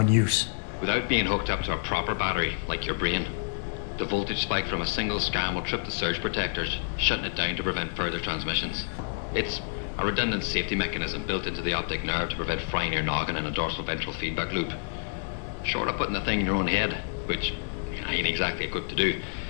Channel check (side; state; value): right; silent; 59 dB below the other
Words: use? Without being hooked up to a proper battery, like your brain. The voltage spike from a single scan will trip the surge protectors, shutting it down to prevent further transmissions. It's a redundant safety mechanism built into the optic nerve to prevent frying your noggin in a dorsal ventral feedback loop. Short of putting the thing in your own head, which I ain't exactly equipped to do,